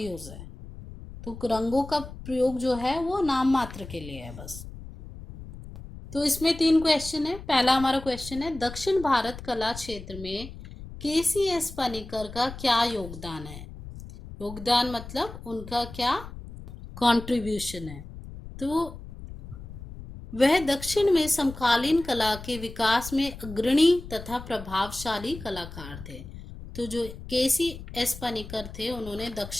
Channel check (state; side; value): noise; left; rumble, 13 dB below the sound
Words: है। तो रंगों का प्रयोग जो है वो नाम मात्र के लिए है बस। तो इसमें 3 क्वेश्चन है। पहला हमारा क्वेश्चन है, दक्षिण भारत कला क्षेत्र में KCS पनिकर का क्या योगदान है? योगदान मतलब उनका क्या कंट्रीब्यूशन है। तो वह दक्षिण में समकालीन कला के विकास में अग्रणी तथा प्रभावशाली कलाकार थे। तो जो KCS पनिकर थे, उन्होंने